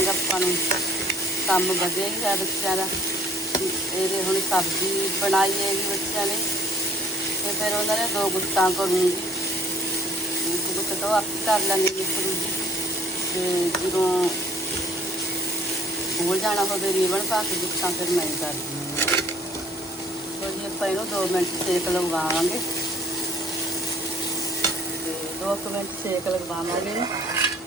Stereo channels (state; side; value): normal; both; correlation 0.58